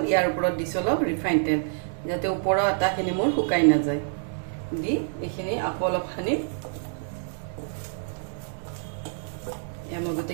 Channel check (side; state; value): left; silent; digital silence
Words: ইয়াৰ ওপৰত দিছো অলপ ৰিফাইন তেল যাতে ওপৰৰ আটাখিনি মোৰ শুকাই না যায় দি এখিনি আকৌ অলপ সানি এয়া মই